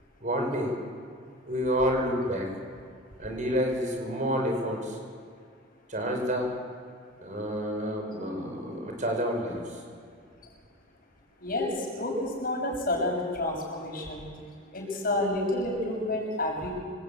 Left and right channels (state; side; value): normal; both; correlation 0.26